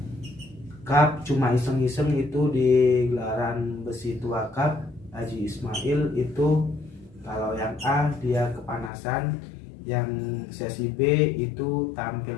cup cuma iseng-iseng, itu di gelaran Besi Tua Cup Haji Ismail. Itu kalau yang A dia kepanasan, yang sesi B itu tampil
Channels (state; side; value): drops out; right; at 8.9 s